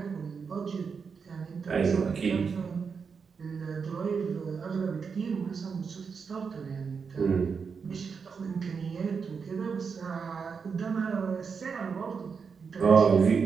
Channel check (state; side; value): quieter; left; 5.7 dB